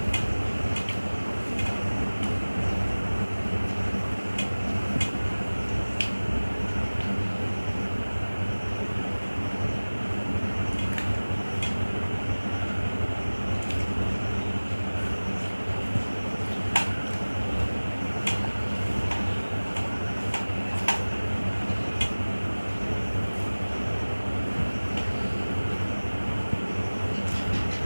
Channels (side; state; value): both; inverted; correlation -1.00